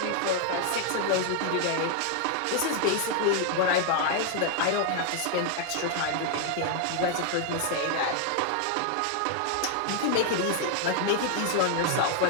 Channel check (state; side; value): different; both; correlation 0.00